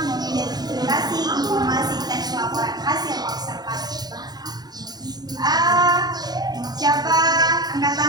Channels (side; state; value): left; late; 0.19 ms